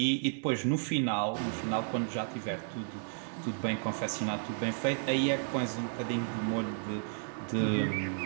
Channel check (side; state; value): left; silent; digital silence